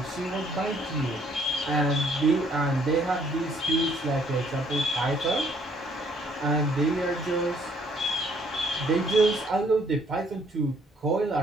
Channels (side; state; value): both; normal; correlation 0.64